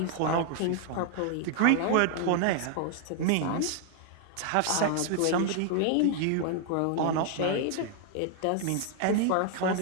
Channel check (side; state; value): both; different; correlation 0.00